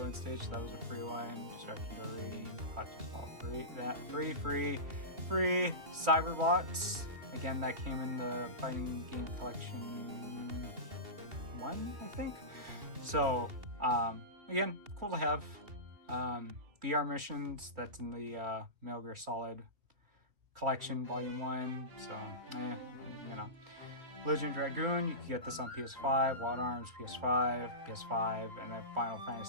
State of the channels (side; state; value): left; late; 2.8 ms